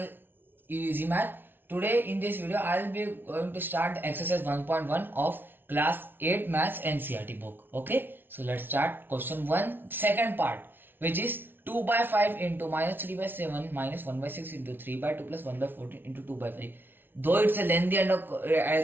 Easy Math. Today in this video I will be going to start exercise 1.1 of class 8 maths NCERT book. Okay, so let's start question 1 second part, which is 2 by 5 into minus 3 by 7 minus 1 by 6 into 3 by 2 plus 1 by 14 into 2 by 5. Though it's a lengthy and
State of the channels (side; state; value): left; late; 0.10 ms